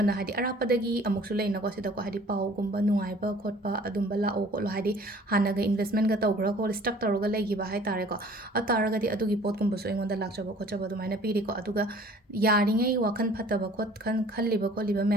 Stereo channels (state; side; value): normal; both; correlation 0.51